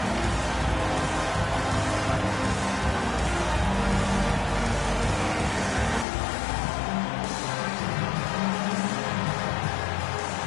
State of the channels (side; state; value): right; drops out; at 6.1 s